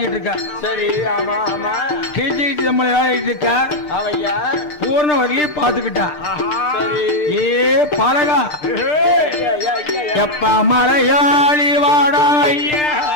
இருக்கா. சரி, கீழ்ச்சி கீழ்ச்சி தம்பளம் விளையாடிட்டு இருக்கா. பூர்ணவல்லி பாத்துக்கிட்டா. ஏ பழகா எப்ப மலையாளி வாடா ஐயா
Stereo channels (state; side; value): late; right; 6.7 ms